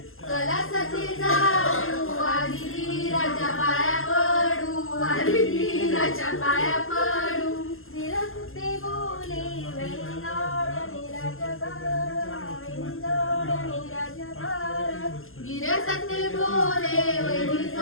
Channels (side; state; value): right; late; 0.60 ms